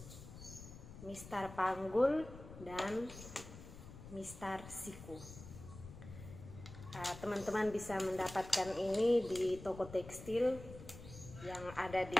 mistar panggul, dan mistar siku. Teman-teman bisa mendapatkan ini di toko tekstil yang ada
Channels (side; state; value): left; noise; rumble, 14 dB below the sound